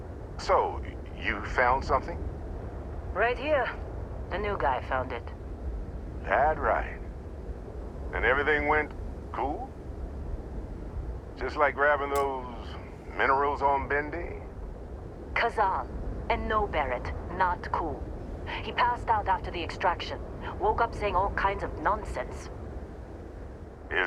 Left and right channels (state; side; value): identical; both; correlation 1.00